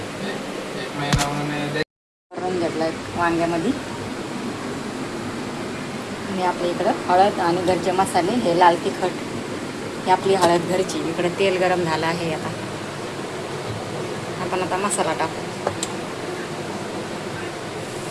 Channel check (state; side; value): identical; both; correlation 1.00